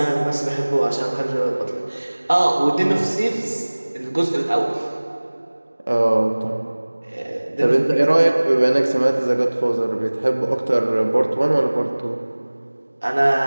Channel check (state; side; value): inverted; both; correlation -1.00